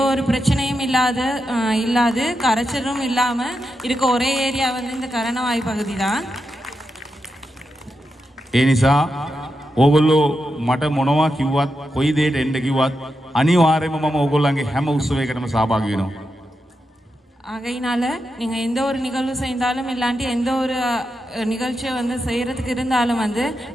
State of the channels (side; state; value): both; normal; correlation 0.87